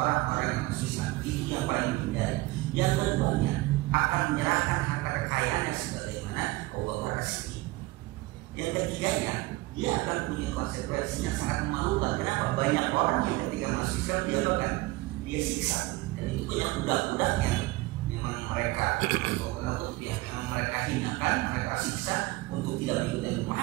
yang masih Islam. Itu yang paling dihindari. Yang keduanya akan menyerahkan harta kekayaannya sebagaimana Abu Bakar As-Siddiq. Yang ketiganya dia akan punya konsekuensi yang sangat memalukan. Kenapa? Banyak orang yang ketika masuk Islam dia bahkan dia siksa, dan itu punya budak-budak yang memang mereka yang mereka hinakan, mereka siksa untuk tidak mengikuti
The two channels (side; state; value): left; quieter; 20.3 dB